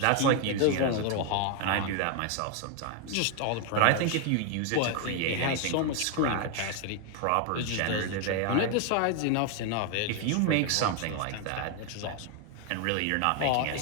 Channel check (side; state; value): both; different; correlation 0.01